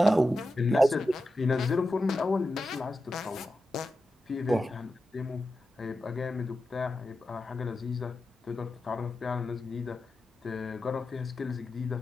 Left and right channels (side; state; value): both; normal; correlation 0.91